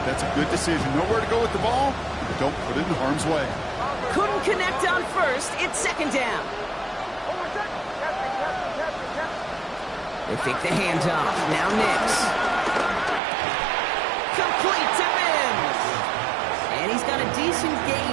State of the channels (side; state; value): left; drops out; at 13.2 s